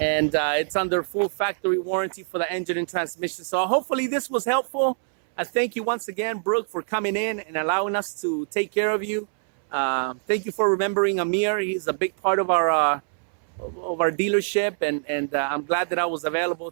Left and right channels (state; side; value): silent; left; 62 dB below the other